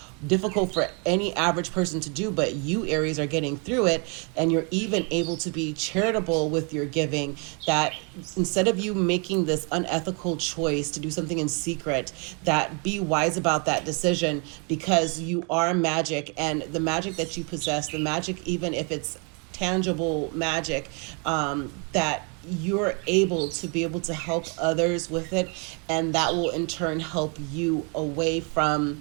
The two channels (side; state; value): left; quieter; 35.3 dB